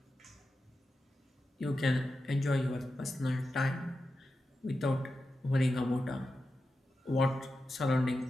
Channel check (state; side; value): normal; both; correlation 0.91